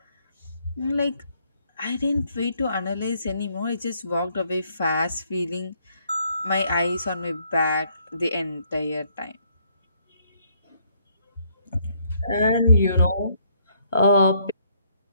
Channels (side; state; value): both; inverted; correlation -0.69